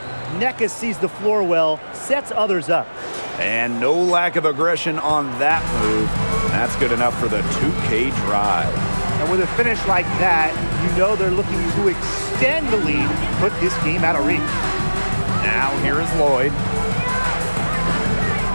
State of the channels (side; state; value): both; inverted; correlation -1.00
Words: Nneka sees the floor well, sets others up. And no lack of aggression on that move. That's good enough for the 2K drive. And with a finish like that, you know they're looking to extend the lead, put this game out of reach. Now here is Lloyd.